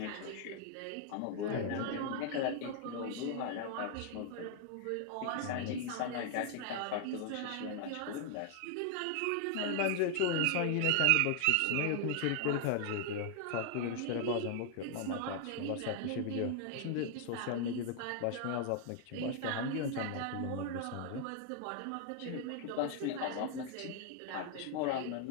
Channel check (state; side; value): different; both; correlation 0.00